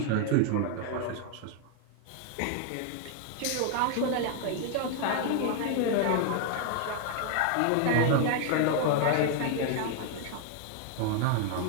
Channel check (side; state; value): both; different; correlation 0.00